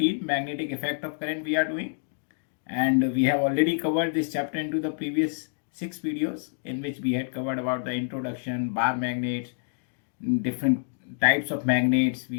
magnetic effect of current we are doing. And we have already covered this chapter into the previous 6 videos in which we had covered about the introduction, bar magnets, different types of magnets.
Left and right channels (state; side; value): silent; right; digital silence